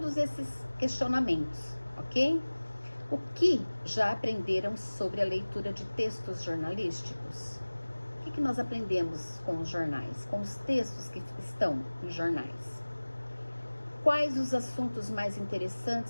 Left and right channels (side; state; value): both; inverted; correlation -1.00